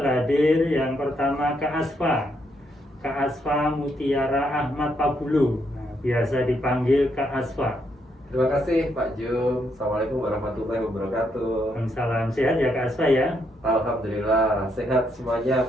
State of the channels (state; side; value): normal; both; correlation 0.76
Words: hadir yang pertama Kak Asfa Mutiara Ahmad Pabulu, biasa dipanggil Kak Asfa. Terima kasih Pak Jum. Assalamualaikum warahmatullahi wabarakatuh. Salam sehat ya Kak Asfa ya. Alhamdulillah sehat semuanya